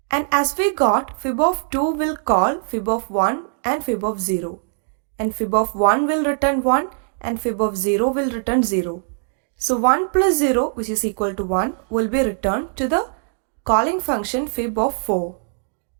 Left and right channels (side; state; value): left; silent; 65 dB below the other